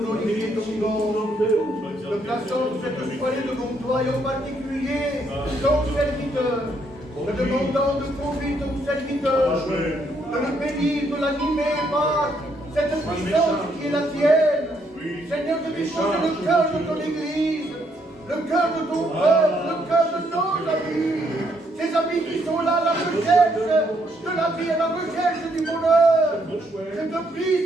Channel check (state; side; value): normal; both; correlation 0.72